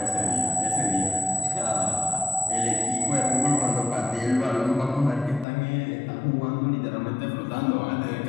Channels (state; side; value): drops out; right; at 5.5 s